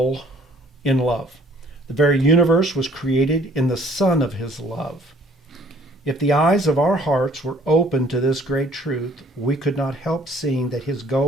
in love. The very universe was created in the Son of His love. If the eyes of our hearts were open to this great truth, we could not help seeing that His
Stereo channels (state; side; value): normal; both; correlation 0.57